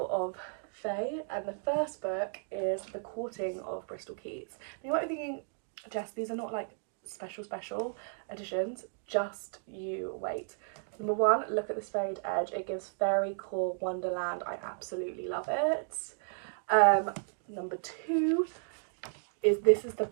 of fae. And the first book is The Courting of Bristol Keats. Now you might be thinking, Jess, these are not like special editions, just you wait. Number 1, look at this frayed edge. It gives fairy core wonderland. I absolutely love it. Number 2 is, this is the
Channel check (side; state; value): left; silent; digital silence